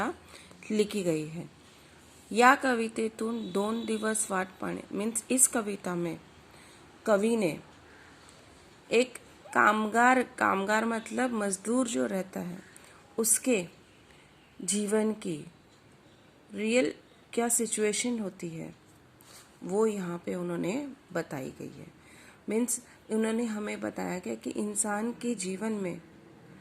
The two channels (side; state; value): both; identical; correlation 1.00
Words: लिखी गई है। या कवितेतून दोन दिवस वाट पाहणे मीन्स इस कविता में कवि ने एक कामगार मतलब मजदूर जो रहता है उसके जीवन की रियल क्या सिचुएशन होती है वो यहाँ पे उन्होंने बताई गई है। मीन्स उन्होंने हमें बताया गया कि इंसान के जीवन में